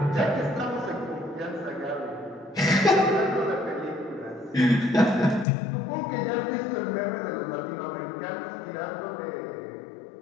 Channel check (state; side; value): drops out; right; at 5.5 s